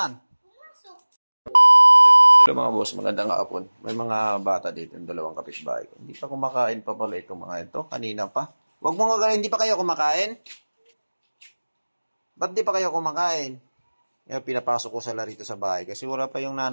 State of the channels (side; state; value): both; inverted; correlation -1.00